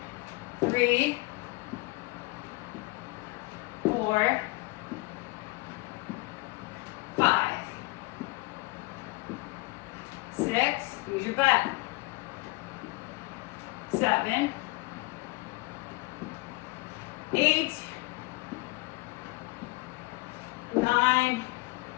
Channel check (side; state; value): right; quieter; 23.9 dB